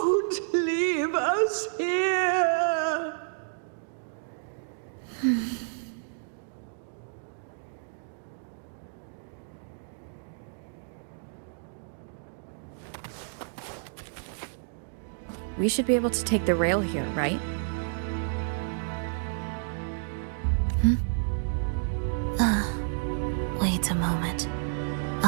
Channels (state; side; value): silent; left; digital silence